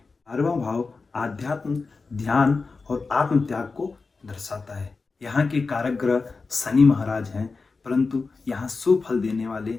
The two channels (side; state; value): right; quieter; 4.2 dB